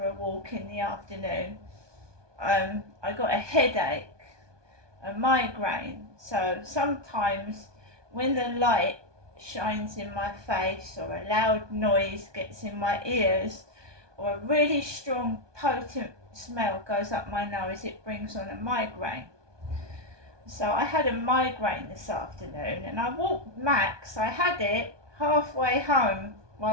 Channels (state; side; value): late; left; 1.2 ms